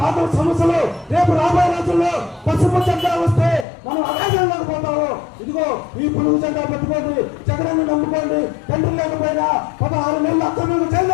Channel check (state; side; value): drops out; right; at 3.7 s